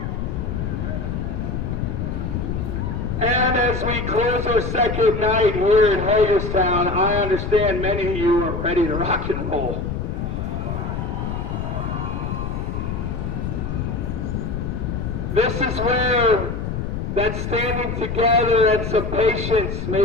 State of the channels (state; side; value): noise; left; rumble, 3 dB below the sound